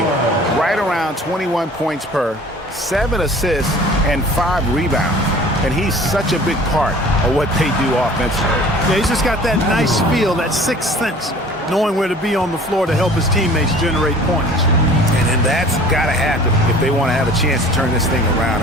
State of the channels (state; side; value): normal; both; correlation 0.47